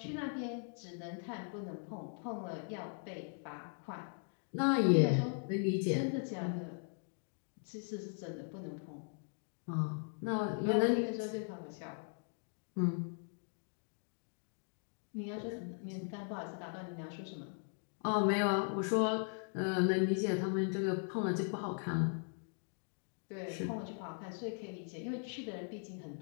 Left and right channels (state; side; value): silent; right; 52 dB below the other